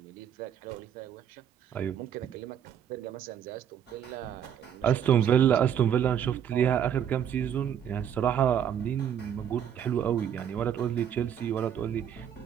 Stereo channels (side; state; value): left; quieter; 9.1 dB